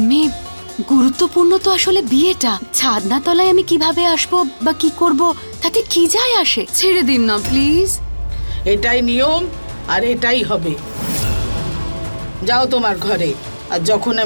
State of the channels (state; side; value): inverted; both; correlation -1.00